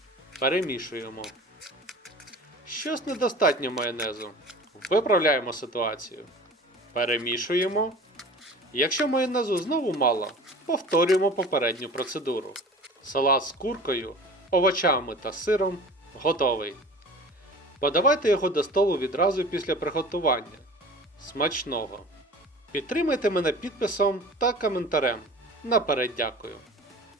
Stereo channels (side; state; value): both; normal; correlation 0.40